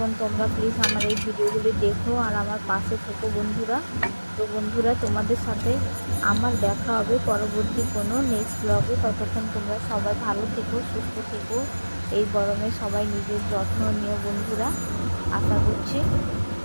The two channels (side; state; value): both; inverted; correlation -1.00